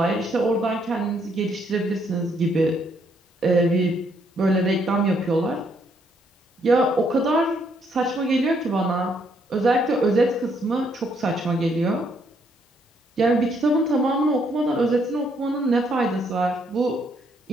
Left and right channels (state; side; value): normal; both; correlation 0.71